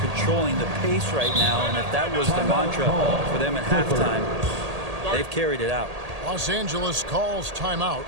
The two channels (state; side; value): late; left; 1.8 ms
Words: the pace right now, and if that was the mantra for them at halftime, they've carried it out. Los Angeles calls timeout.